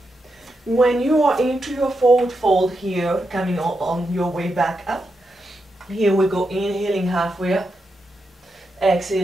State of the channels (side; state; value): both; normal; correlation 0.85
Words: when you are into your forward fold here, coming on your way back up, here we go, inhaling halfway up,